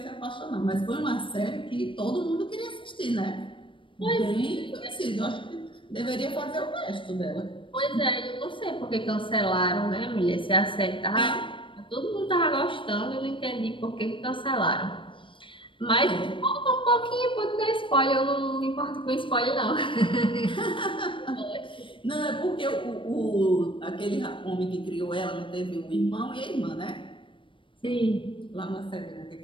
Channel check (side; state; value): right; late; 0.25 ms